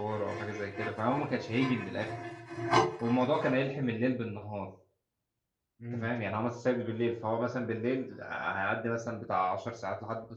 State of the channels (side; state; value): both; identical; correlation 1.00